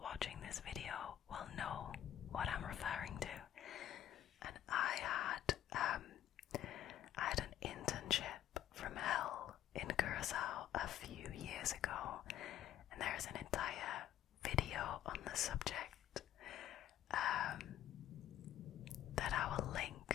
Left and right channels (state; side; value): quieter; right; 11.7 dB